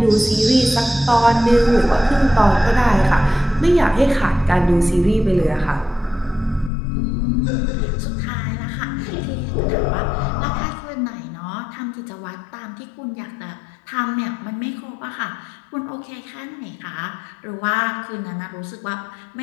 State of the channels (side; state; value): right; drops out; at 6.7 s